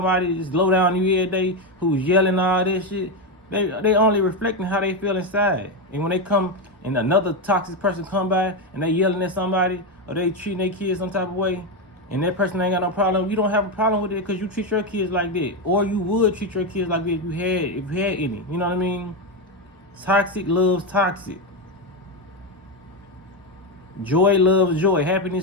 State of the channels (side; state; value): both; normal; correlation 0.09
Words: just low down you every day who's yelling all this shit. They only reflecting how they feel inside. And when they come and another toxic person come by and they yelling at somebody or they treating their kids some type of way, and that person ain't got no problem, you don't have a problem with it because you treat your kids like that. Or you would treat your kids like that if you had any. You know what I mean? Toxic loves toxic. Joy loves joy.